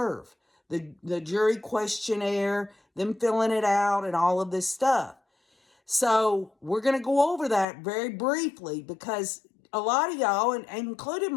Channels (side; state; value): right; drops out; at 7.7 s